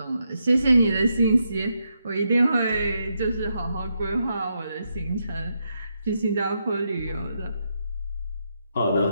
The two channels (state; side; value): inverted; both; correlation -0.81